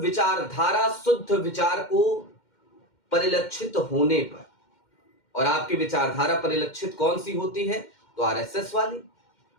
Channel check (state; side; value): late; right; 2.1 ms